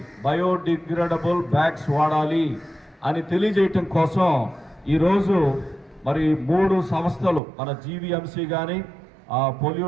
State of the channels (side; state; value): left; drops out; at 7.4 s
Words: బయోడిగ్రేడబుల్ బ్యాగ్స్ వాడాలి అని తెలియజేయటం కోసం ఈరోజు మరి 3 సంస్థలు మన జీవీఎంసీ కానీ